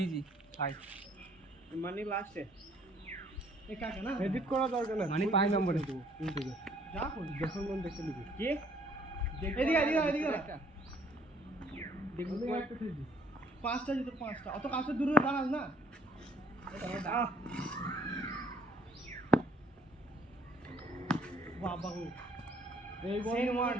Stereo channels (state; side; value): normal; both; correlation 0.61